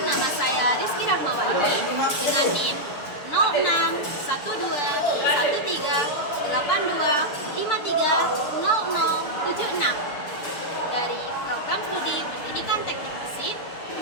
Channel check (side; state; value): right; late; 6.8 ms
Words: nama saya Rizky Rahmawati dengan NIM 06131382530076 dari Program Studi Pendidikan Teknik Mesin